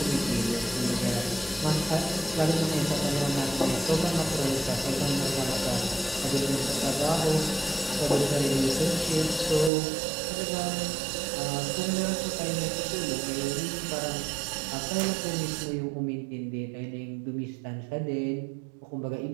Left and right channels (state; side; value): drops out; left; at 9.7 s